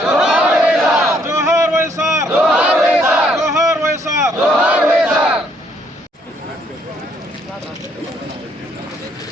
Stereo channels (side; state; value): both; normal; correlation 0.68